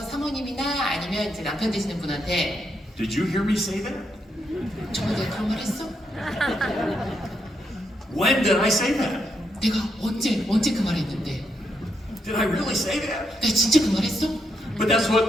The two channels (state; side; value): normal; both; correlation 0.79